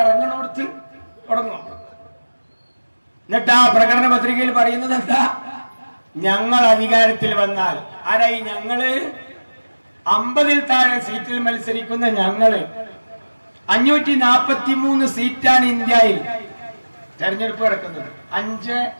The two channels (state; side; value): inverted; both; correlation -1.00